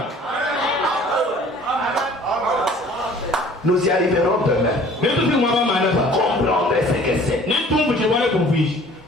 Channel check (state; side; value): normal; both; correlation 0.51